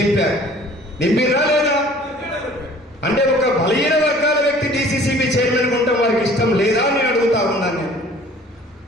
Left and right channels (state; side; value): normal; both; correlation 0.51